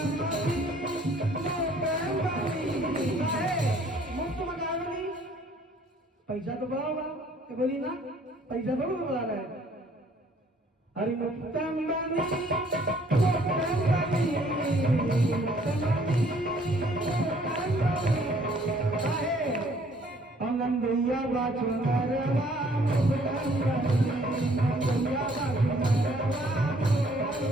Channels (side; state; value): both; normal; correlation 0.60